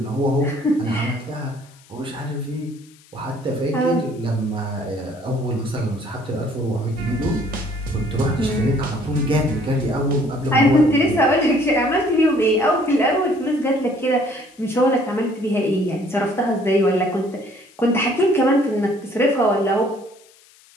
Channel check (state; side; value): noise; left; hiss, 28 dB below the sound